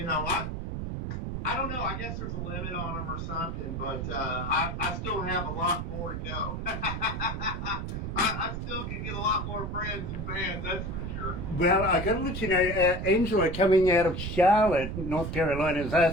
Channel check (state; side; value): noise; right; rumble, 4 dB below the sound